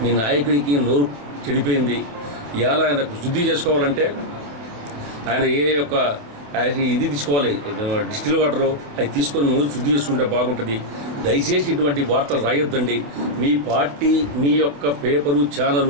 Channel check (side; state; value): left; late; 27 ms